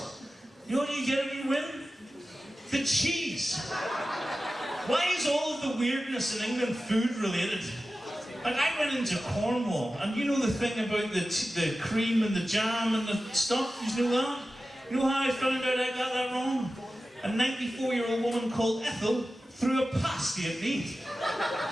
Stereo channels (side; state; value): both; normal; correlation 0.94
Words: You know what you get if you win? The cheese. Why is all of the weirdness in England food related? Like, I went into Cornwall, and you know the thing about the cream and the jam and the stuff? You know that? You know how I found out I got that wrong? A 94-year-old woman called Ethel threw a pasty at me.